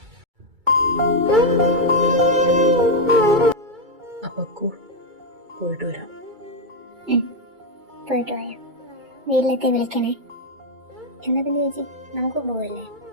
അപ്പക്കു പോയിട്ട് വരാം. പോയിട്ട് വരാം. വീട്ടിലെത്തി വിളിക്കണേ. എന്നാ പിന്നെ ചേച്ചി നമുക്ക് പോവല്ലേ?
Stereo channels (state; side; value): late; left; 2.3 ms